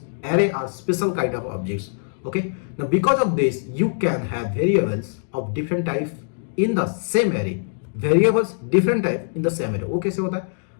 array are special kind of objects, okay। Now because of this you can have variables of different type in the same array, वो कैसे होता है?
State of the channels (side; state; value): right; silent; digital silence